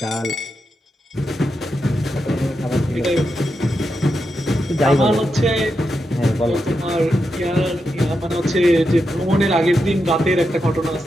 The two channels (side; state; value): both; normal; correlation 0.86